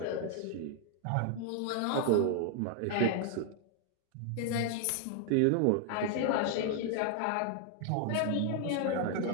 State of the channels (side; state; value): both; different; correlation 0.00